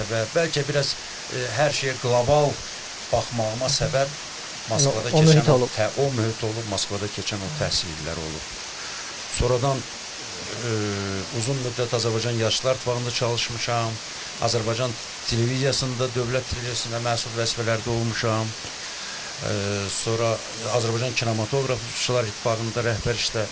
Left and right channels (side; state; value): both; identical; correlation 1.00